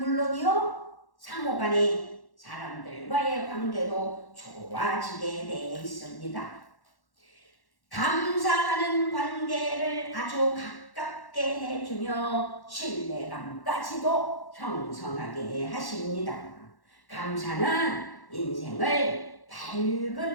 상호간의 사람들과의 관계도 좋아지게 되어 있습니다. 감사하는 관계를 아주 가깝게 해주며 신뢰감까지도 형성하게 하십니다. 감사는 인생을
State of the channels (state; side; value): late; right; 1.1 ms